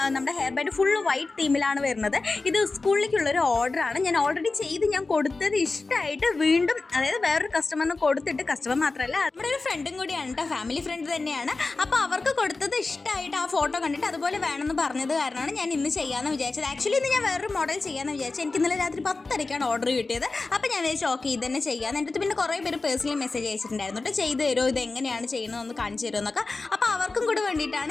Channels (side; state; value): right; quieter; 3.7 dB